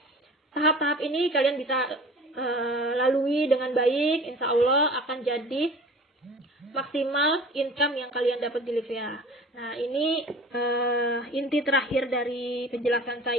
tahap-tahap ini kalian bisa lalui dengan baik. Insya Allah akan jadi maksimal income yang kalian dapat di Livia. Nah, ini inti terakhir dari penjelasan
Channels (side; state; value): both; normal; correlation 0.43